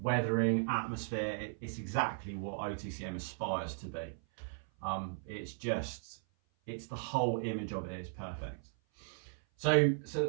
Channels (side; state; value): left; silent; 53 dB below the other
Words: atmosphere. It's exactly what OTCM aspires to be. It's the whole image of it is perfect. So